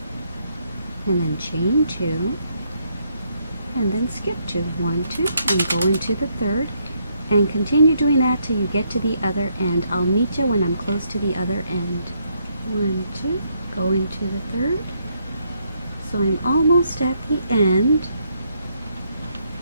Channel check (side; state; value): both; inverted; correlation -0.74